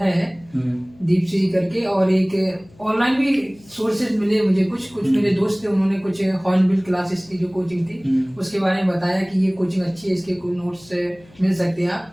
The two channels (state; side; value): noise; left; hum, 26 dB below the sound